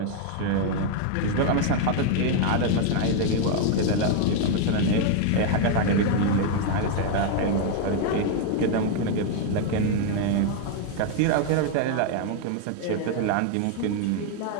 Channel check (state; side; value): different; both; correlation 0.00